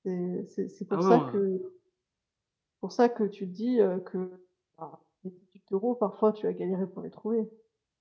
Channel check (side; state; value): both; identical; correlation 1.00